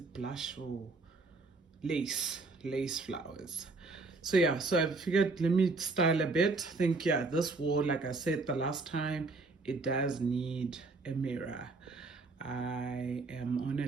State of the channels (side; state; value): left; quieter; 3.6 dB